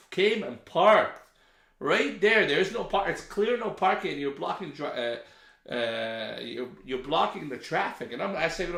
came and parked right there. There's no park. It's clear no parking, and you're blocking you're blocking the traffic. And I say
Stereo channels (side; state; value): both; identical; correlation 1.00